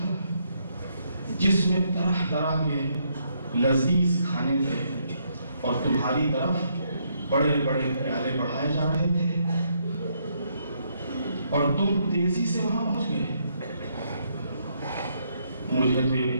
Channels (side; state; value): both; inverted; correlation -0.74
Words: جس میں طرح طرح کے لذیذ کھانے تھے اور تمہاری طرف بڑے بڑے پیالے بڑھائے جا رہے تھے اور تم تیزی سے وہاں پہنچ گئے مجھے تو یہ